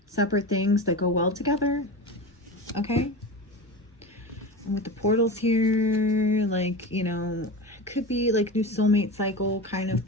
separate things that go well together, okay? And with the portals here, like, you know, it could be, like, new soulmate cycle kind of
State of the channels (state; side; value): normal; both; correlation 0.26